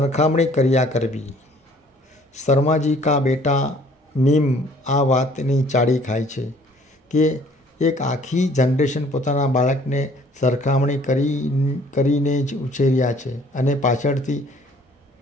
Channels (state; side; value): normal; both; correlation 0.56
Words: કર્યા કરવી. શર્માજી કા બેટા મીમ આ વાતની ચાડી ખાય છે કે એક આખી જનરેશન પોતાના બાળકને સરખામણી કરીને જ ઉછેર્યા છે. અને